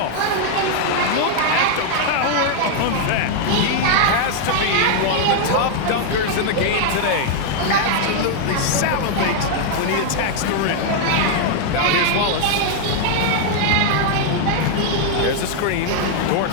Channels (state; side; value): different; both; correlation 0.00